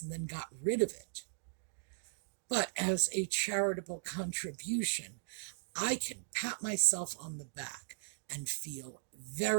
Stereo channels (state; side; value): silent; left; digital silence